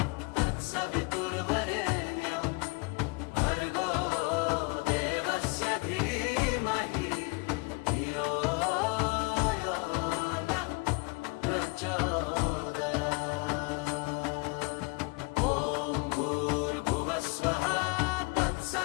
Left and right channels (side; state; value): right; quieter; 28.5 dB